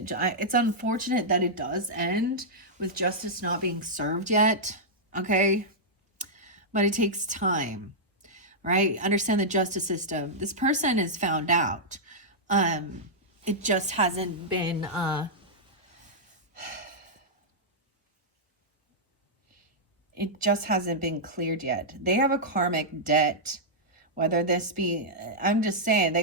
It's unfortunate that it does end with justice not being served yet. Okay. But it takes time, right? Understand the justice system. This person is found out. It just hasn't been, it just hasn't been cleared yet. They have a karmic debt, whether this be, I'm just saying, they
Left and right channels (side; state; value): both; normal; correlation -0.10